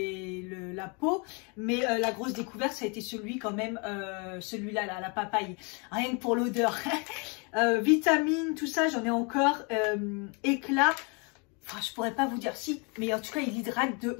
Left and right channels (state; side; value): quieter; right; 32.9 dB